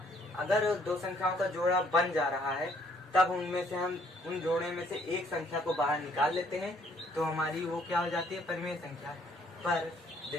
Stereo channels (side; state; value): both; normal; correlation 0.65